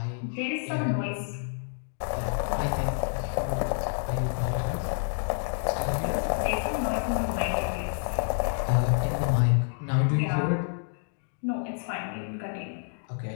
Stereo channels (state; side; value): silent; right; digital silence